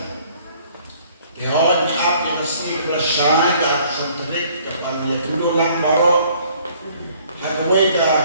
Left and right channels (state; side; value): inverted; both; correlation -0.59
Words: Dihon up yang sini bersyai ke sentrik kepada dulu lang baro hagway ka